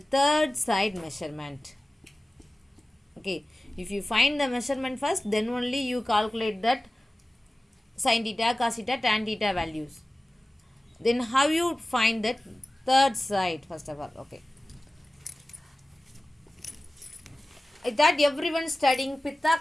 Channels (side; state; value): both; normal; correlation 0.96